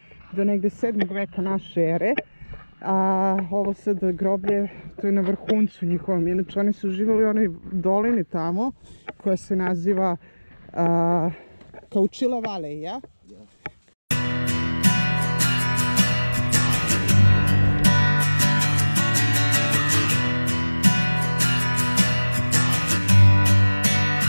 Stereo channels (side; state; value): both; inverted; correlation -1.00